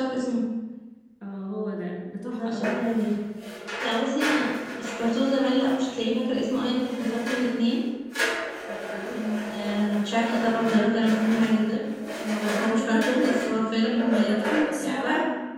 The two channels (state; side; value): identical; both; correlation 1.00